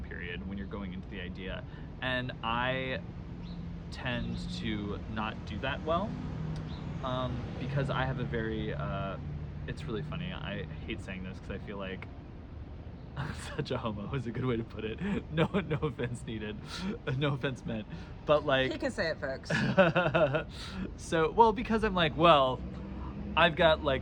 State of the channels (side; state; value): both; identical; correlation 1.00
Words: period when you're going into the idea, and I tend to not do that well because I have a very it's really funny. I hate saying this because I feel like I'm such a homo is a good way to put it. No offense needed. No offense meant. But he can say it, folks. So, well, because I'm I've got